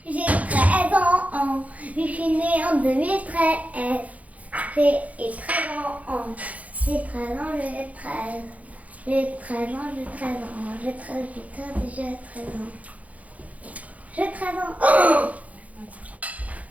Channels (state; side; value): late; left; 0.070 ms